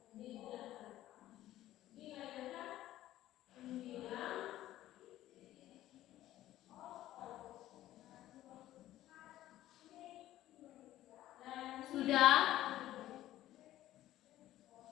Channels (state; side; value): quieter; right; 14.2 dB